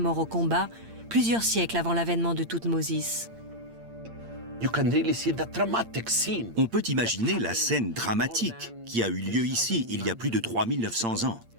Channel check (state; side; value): late; left; 8.7 ms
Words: au combat plusieurs siècles avant l'avènement de Thoutmôsis. On peut imaginer la scène dramatique qui a eu lieu ici il y a plus de 3900 ans.